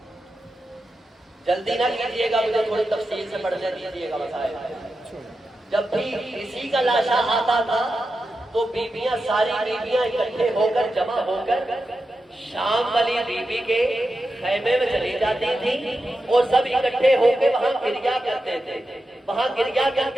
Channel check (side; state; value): both; normal; correlation 0.90